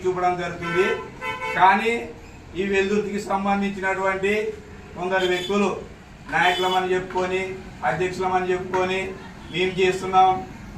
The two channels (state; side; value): identical; both; correlation 1.00